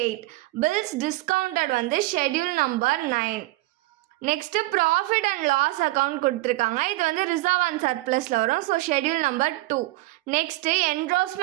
8. Bills discounted schedule number 9. Next profit and loss account கொடுத்துருக்காங்க, இது ரிசர்வ் அண்ட் சர்ப்ளஸ்ல வரும், so schedule number 2. Next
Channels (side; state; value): left; quieter; 19.5 dB